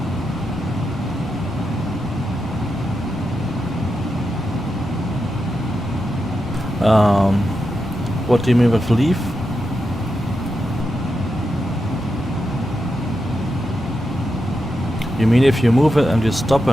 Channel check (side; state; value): both; normal; correlation 0.87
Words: What do you mean with leave? You mean if you move it and you stop